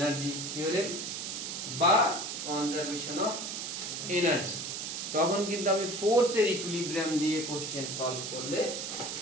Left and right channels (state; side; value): noise; right; hiss, 5 dB below the sound